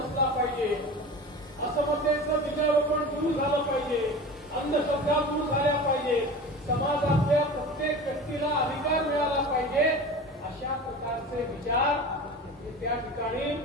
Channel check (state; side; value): normal; both; correlation 0.34